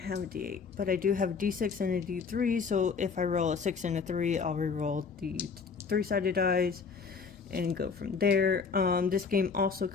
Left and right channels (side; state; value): right; quieter; 5.4 dB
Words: a d8, but I do have a d6 and a d3. So if I roll a 6 and a 3, I'll re-roll the 3-sided dice and go from there. This game also